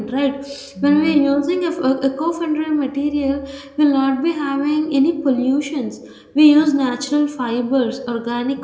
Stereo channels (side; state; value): both; identical; correlation 1.00